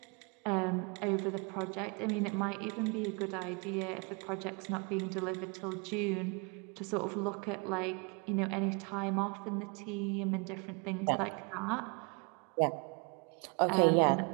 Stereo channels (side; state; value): left; quieter; 32.8 dB